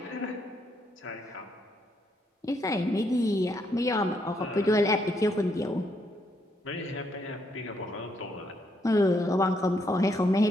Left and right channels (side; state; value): both; normal; correlation 0.75